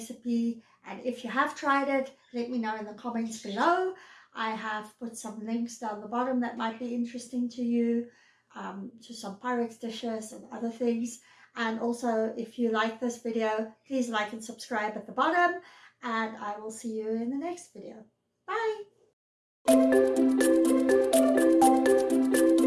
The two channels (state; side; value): identical; both; correlation 1.00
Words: And if you have tried it, let me know in the comments below. I have put some links down the bottom that might be interesting to you, to some Pyrex dishes and other things. And also, if you like this video, please like and subscribe at the bottom. And I will see you in the next video. Bye!